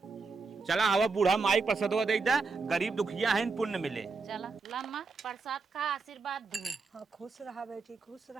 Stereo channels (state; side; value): quieter; left; 4.3 dB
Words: चला हवा बूढ़ा माई प्रसादवा दे दे, गरीब दुखिया है पुण्य मिले। चला लम्मा प्रसाद खा आशीर्वाद दू। हाँ खुश रहा बेटी, खुश